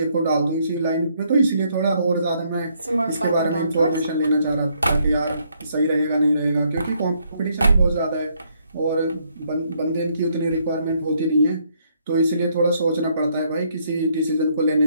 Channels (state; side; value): inverted; both; correlation -0.71